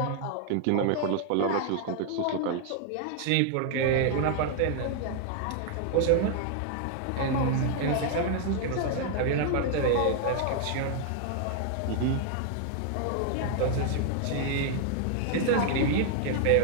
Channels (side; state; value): both; different; correlation 0.00